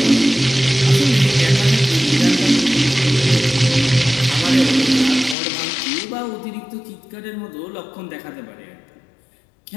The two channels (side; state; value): right; drops out; at 5.4 s